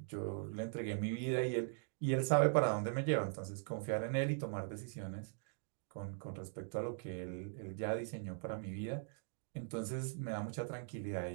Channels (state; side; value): silent; left; digital silence